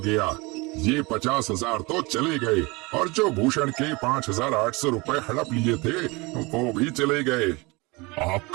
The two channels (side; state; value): left; quieter; 25.3 dB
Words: ये 50,000 तो चले गए और जो भूषण के 5,800 रुपए हड़प लिए थे वो भी चले गए।